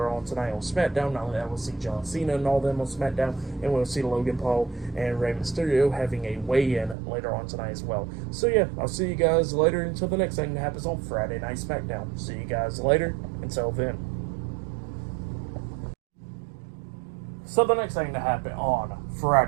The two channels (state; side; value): drops out; left; at 7.0 s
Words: on tonight on SmackDown. Not only that, we'll see John Cena and all them on SmackDown, and we'll see Logan Paul and Rey Mysterio having a weigh-in later on tonight as well. So yeah, I'll see you guys later until the next thing that happens on Friday Night SmackDown. See you guys later. Until then. So the next thing to happen on